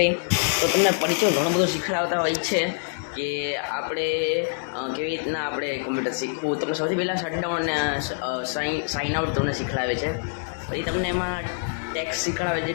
તો તમને પરિચય ઘણો બધો શીખડાવતા હોય છે કે આપણે કેવી રીતના આપણે કોમ્પ્યુટર શીખવું. તમને સૌથી પહેલાં શટડાઉન સાઇન આઉટ તમને શીખડાવે છે. પછી તમને એમાં ટેક્સ શીખડાવે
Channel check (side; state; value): right; silent; digital silence